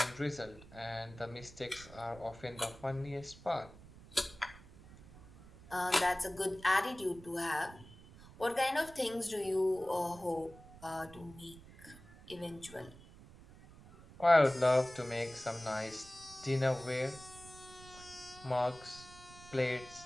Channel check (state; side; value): noise; right; rumble, 19 dB below the sound